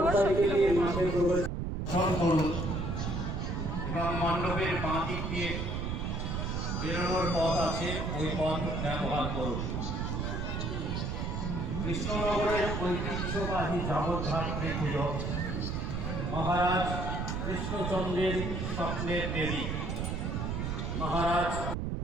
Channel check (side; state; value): right; noise; rumble, 2 dB below the sound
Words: সাইকেল নিয়ে মাঠে প্রবেশ করুন এবং মণ্ডপের বাঁ দিক দিয়ে বেরোনোর পথ আছে, ওই পথ ব্যবহার করুন। কৃষ্ণনগরের ঐতিহ্যবাহী জগদ্ধাত্রী পুজো মহারাজ কৃষ্ণচন্দ্রের স্বপ্নের দেবী মহারাজ